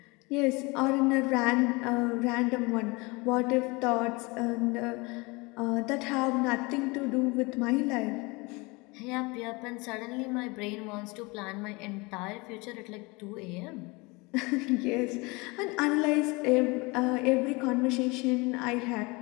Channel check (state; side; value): quieter; right; 26.0 dB